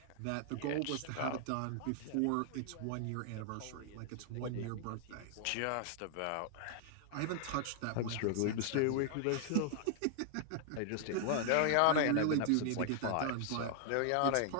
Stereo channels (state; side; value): different; both; correlation 0.00